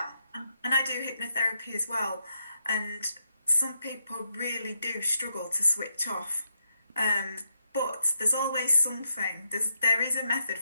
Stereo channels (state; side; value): inverted; both; correlation -0.80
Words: And I do hypnotherapy as well. And some people really do struggle to switch off. But there's always something. There is a method